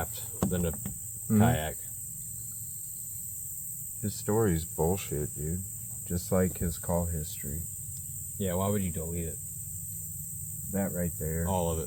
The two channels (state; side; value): identical; both; correlation 1.00